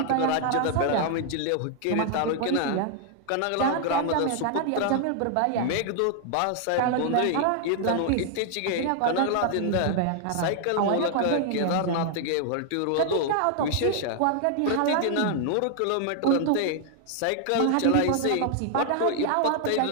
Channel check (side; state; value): both; different; correlation 0.00